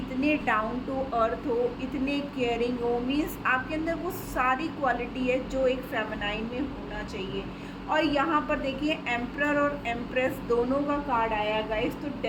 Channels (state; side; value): identical; both; correlation 1.00